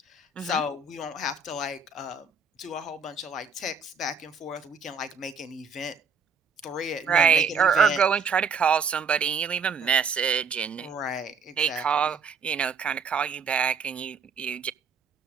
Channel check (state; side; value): quieter; left; 5.3 dB